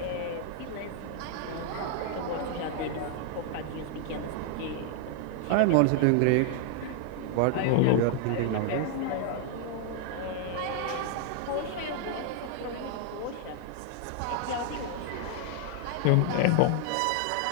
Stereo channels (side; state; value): both; different; correlation 0.00